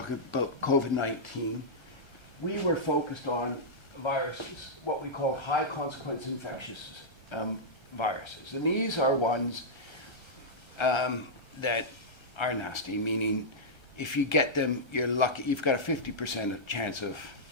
about COVID-19, we were focused on viruses, what we call high consequence infectious viruses. And these are ones that are nasty, meaning if you get them, you're lucky. You've got a 50% chance of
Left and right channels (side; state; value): right; late; 1.3 ms